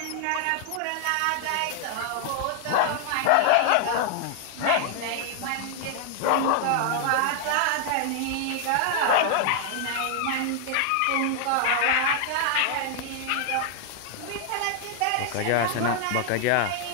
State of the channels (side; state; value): both; different; correlation 0.00